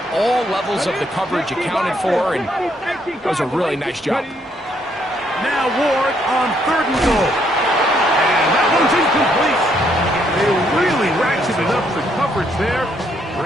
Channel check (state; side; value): normal; both; correlation 0.72